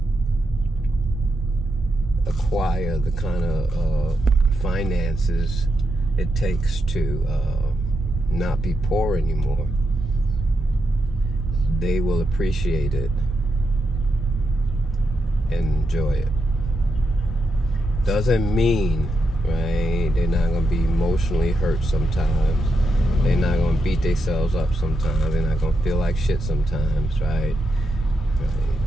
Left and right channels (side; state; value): both; normal; correlation 0.85